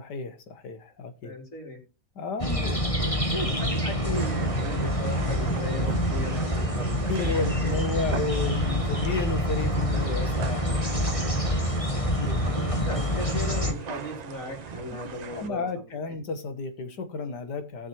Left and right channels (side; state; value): right; late; 1.6 ms